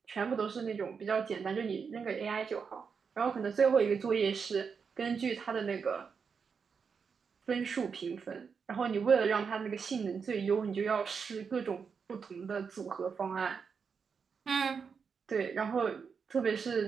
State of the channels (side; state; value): left; quieter; 5.9 dB